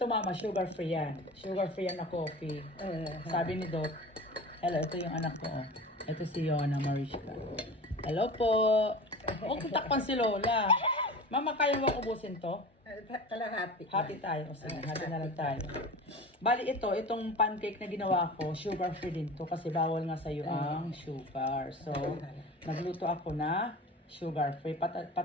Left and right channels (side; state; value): both; normal; correlation 0.35